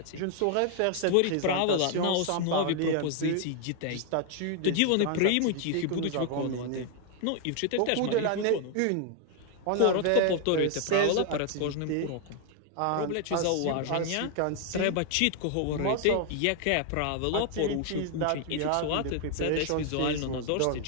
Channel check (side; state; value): both; different; correlation 0.00